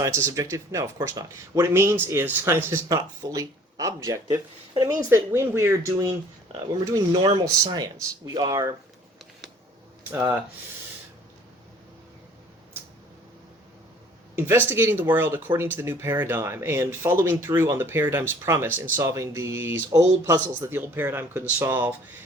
is subjective? No, of course not. What it means is science is not fully objective, and it means that when we're doing normal science, we are investigating the world according to the new paradigm and following through on the paradigm's promise in solving these old puzzles that the old paradigm couldn't solve.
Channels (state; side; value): normal; both; correlation 0.53